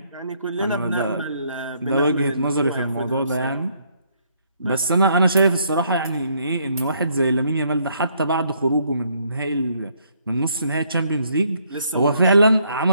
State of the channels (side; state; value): both; inverted; correlation -0.69